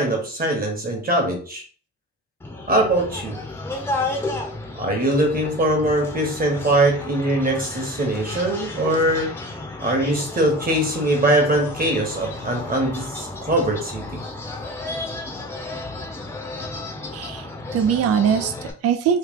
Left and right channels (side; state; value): both; normal; correlation 0.33